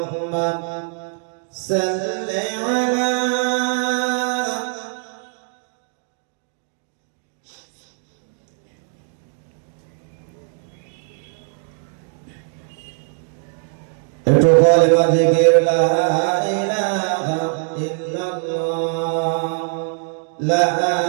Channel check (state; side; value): silent; left; 56 dB below the other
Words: صلی علی একটু কলেমা জিকির লা ইলাহা ইল্লাল্লাহ লা